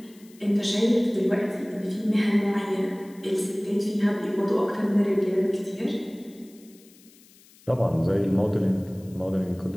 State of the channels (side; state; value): left; noise; hiss, 26 dB below the sound